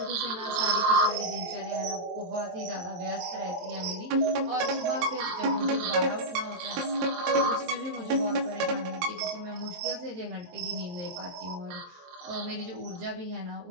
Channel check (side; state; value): left; late; 23 ms